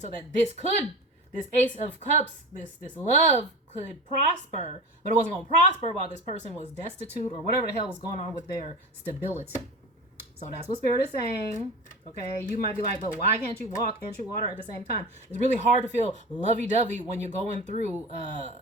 that this Ace of Cups, this love could prosper. But it wasn't going to prosper while this person was destitute or whatever the hell was going on with their stability. So that's what Spirit is saying. Okay, you might be like, but why can't you walk and chew water at the same time? It's really hard to feel lovey-dovey when you're going through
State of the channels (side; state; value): both; normal; correlation 0.31